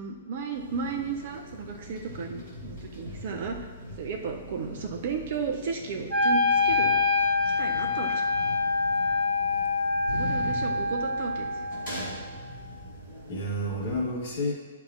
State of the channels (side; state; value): both; inverted; correlation -0.61